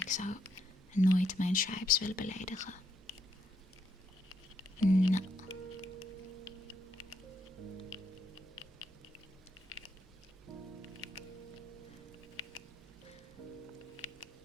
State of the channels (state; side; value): normal; both; correlation 0.77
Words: zou nooit mijn tribes willen beledigen. Nou.